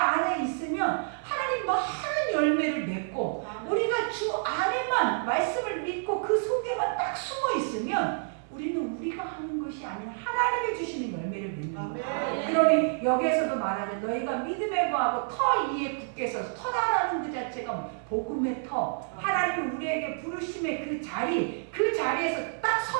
있으면 하나님 많은 열매를 맺고, 우리가 주 안에만 말씀을 믿고 그 속에만 딱 숨어 있으면 우리는 우리가 하는 것이 아니라 하나님이 주시는 열매를 맺는 거예요. 그러니 여기에서도 말하죠. 너희가 믿음에 거하고 터 위에 굳게 서서, 터라는 그 자체가 복음의 터, 하나님이 우리에게 부르심의 그 자리에서 딱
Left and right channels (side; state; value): left; silent; 59 dB below the other